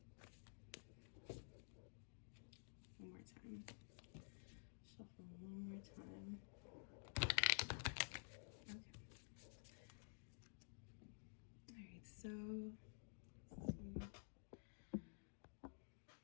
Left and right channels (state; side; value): silent; right; digital silence